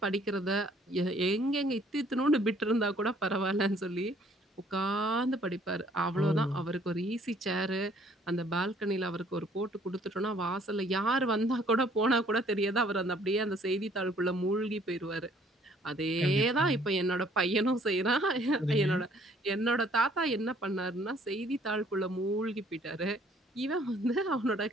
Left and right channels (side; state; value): both; normal; correlation 0.60